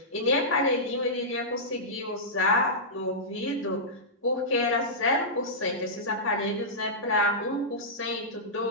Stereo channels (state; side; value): normal; both; correlation -0.15